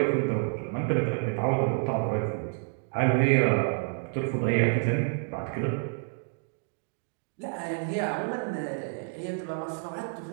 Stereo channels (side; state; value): left; silent; 59 dB below the other